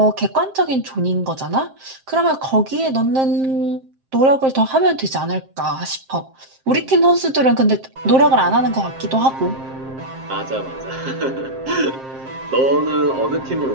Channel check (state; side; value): late; left; 7.6 ms